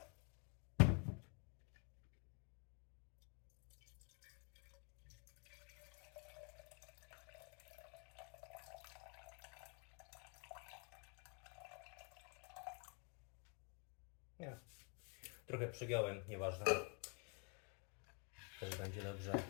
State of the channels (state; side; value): quieter; right; 37.2 dB